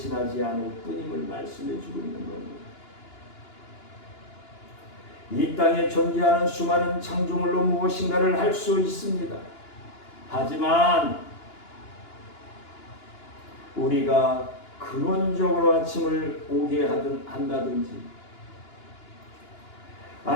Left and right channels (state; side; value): late; right; 2.9 ms